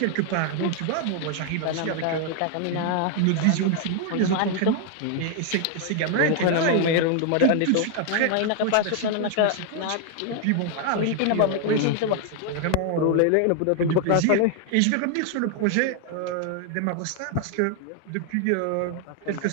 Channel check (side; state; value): both; different; correlation 0.00